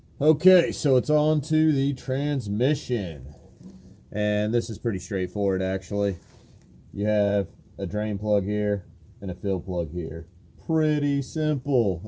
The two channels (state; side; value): identical; both; correlation 1.00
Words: Okay, so it's on to the transmission, and this is pretty straightforward actually. You have a drain plug here and a fill plug here. Pretty